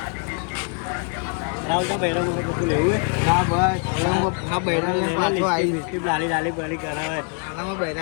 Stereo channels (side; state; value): right; quieter; 39.6 dB